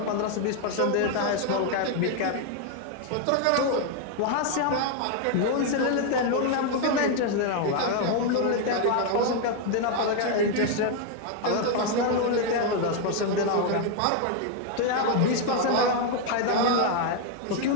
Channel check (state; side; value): different; both; correlation 0.01